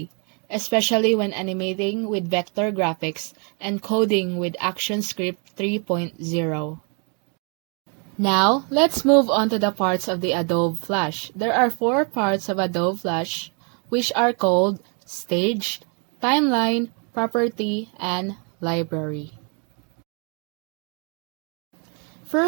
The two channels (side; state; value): left; quieter; 37.4 dB